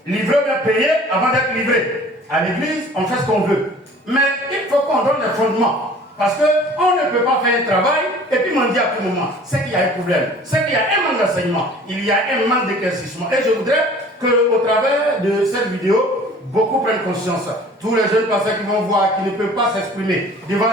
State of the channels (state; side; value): normal; both; correlation 0.48